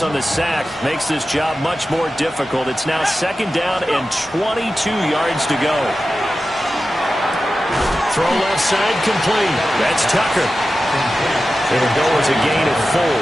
on the sack makes this job much more difficult. It's now second down and 22 yards to go. Throw left side complete. That's Tucker. It'll go as a gain of 4.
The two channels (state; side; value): normal; both; correlation 0.93